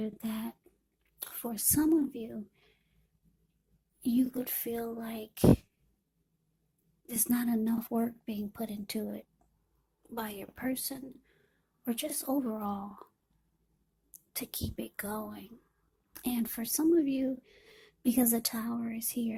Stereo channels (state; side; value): identical; both; correlation 1.00